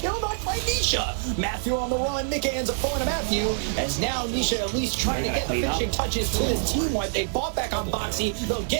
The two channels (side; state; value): left; silent; digital silence